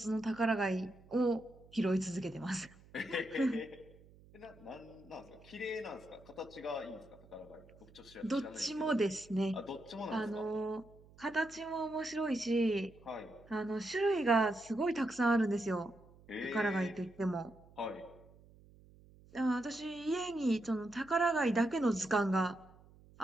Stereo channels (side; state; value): right; noise; hum, 24 dB below the sound